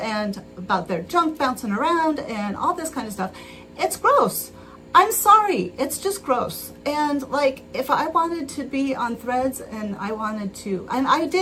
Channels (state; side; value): identical; both; correlation 1.00